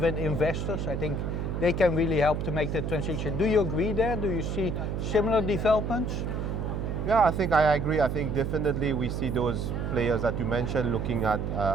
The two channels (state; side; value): noise; right; hum, 2 dB below the sound